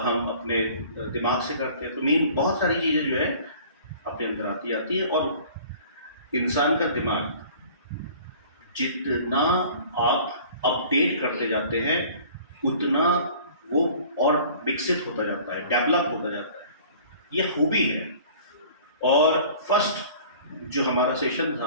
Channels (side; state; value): both; inverted; correlation -0.48